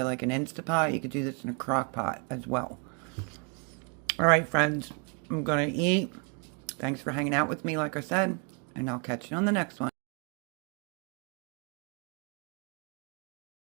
like an Instapot. You could do this in a crock pot as well. Alright, friends. I'm going to eat. Thanks for hanging out with me, like I said. And I'll catch you on the next one.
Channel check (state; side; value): quieter; left; 36.4 dB